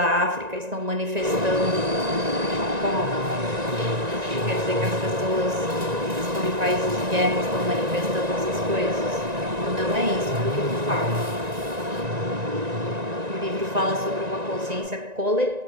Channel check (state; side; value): late; left; 1.9 ms